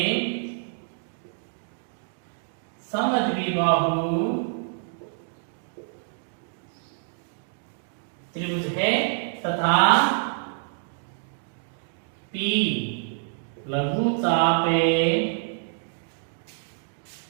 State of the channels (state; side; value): silent; left; digital silence